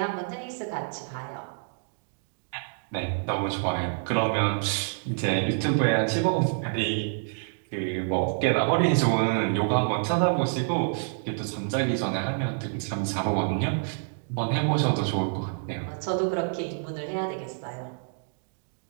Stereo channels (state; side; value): silent; left; digital silence